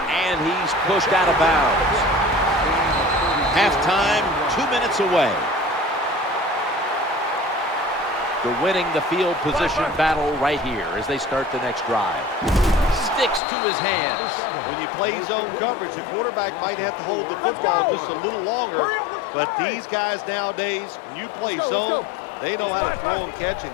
And he's pushed out of bounds. Halftime, 2 minutes away. They're winning the field position battle right here as they start the next drive. Sticks to his hands. When you play zone coverage, the quarterback might have to hold the football just a little longer. But these guys nowadays, when you play zone, they know how to throw and catch and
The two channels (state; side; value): drops out; right; at 13.4 s